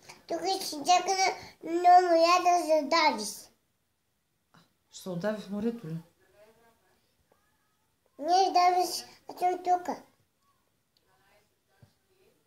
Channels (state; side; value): identical; both; correlation 1.00